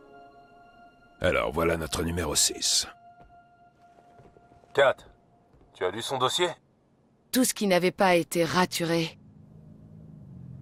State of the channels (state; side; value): identical; both; correlation 1.00